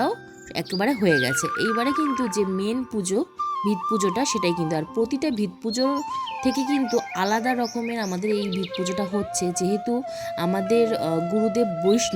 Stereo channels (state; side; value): identical; both; correlation 1.00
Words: একেবারে হয়ে গেছে। এইবারে কিন্তু যে মেন পুজো, ভিত পুজোটা, সেটাই কিন্তু, আর প্রতিটা ভিত পুজো থেকে কিন্তু আলাদা রকমের আমাদের এই ভিত পুজোটা হচ্ছে। যেহেতু আমাদের গুরুদেব